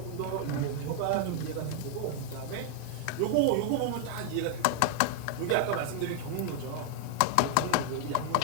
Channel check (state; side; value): different; both; correlation 0.00